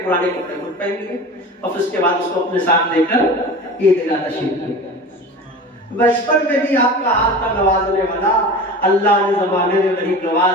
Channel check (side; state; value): both; normal; correlation 0.34